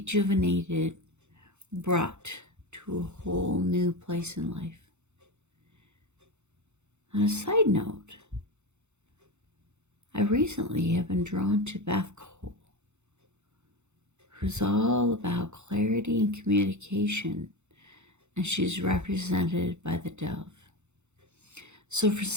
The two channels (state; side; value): late; left; 0.83 ms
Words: brought to a whole new place in life. On a side note, I recently have been drawn to Beth Cole, who's all about clarity and communication, and she's represented by the dove. So for